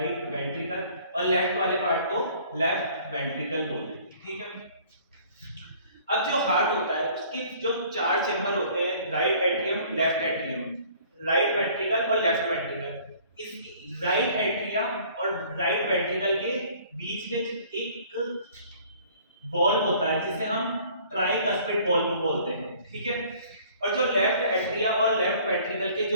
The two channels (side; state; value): both; inverted; correlation -0.54